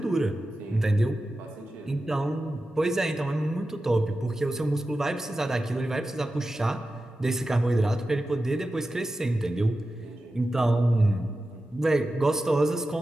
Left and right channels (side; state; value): both; normal; correlation 0.93